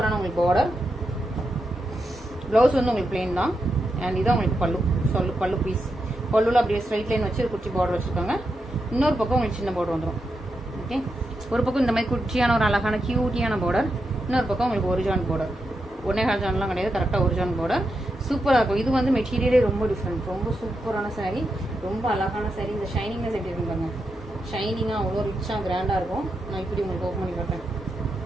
உங்களுக்கு பார்டர். ப்ளவுஸ் வந்து உங்களுக்கு பிளெயின் தான். அண்ட் இதான் உங்களுக்கு பல்லு பீஸ். பல்லுல அப்படியே ஸ்ட்ரைட் லைன் வச்சு குச்சி பார்டர் வச்சுருக்காங்க. இன்னொரு பக்கம் உங்களுக்கு சின்ன பார்டர் வந்துடும். ஓகே, ஒரு பக்கம் இந்த மாதிரி குச்சியான ஒரு அழகான கியூட்டியான பார்டர், இன்னொரு பக்கம் உங்களுக்கு ஒரு ஜான் பார்டர். 1.5 ஜான்லாம் கிடையாது, கரெக்டாக ஒரு ஜான் பார்டர். சூப்பராக இருக்கும். இது வந்து மெட்டீரியலே ரொம்ப டிஃப்ரெண்ட், ரொம்ப சூப்பரான சாரீ, ரொம்ப அழகான சாரீ. இந்த ஷைனிங்னஸ் எப்படி இருக்கும் பாருங்க, ஷைனிங்காக அவ்வளோ ரிச்சாக கிராண்டாக இருக்கும். நான் இப்படி உங்களுக்கு ஓப்பன் பண்ணி காட்டுறேன்.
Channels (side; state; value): both; normal; correlation 0.86